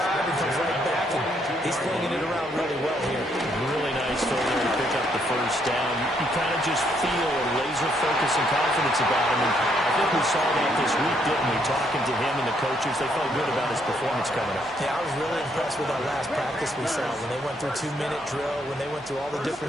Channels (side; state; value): both; normal; correlation 0.72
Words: and comes right back, and he's flinging it around really well here. Really nice throw there to pick up the first down. You kind of just feel a laser focus and confidence about him, and I think we saw that this week, didn't we? Talking to him and the coaches, they felt good about his performance coming up. Yeah, I was really impressed with that last practice we saw when they went through 2-minute drill, when they went through all the